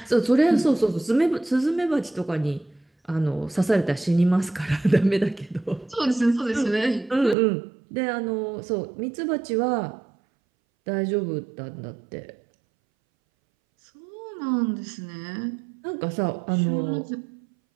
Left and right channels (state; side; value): drops out; left; at 7.4 s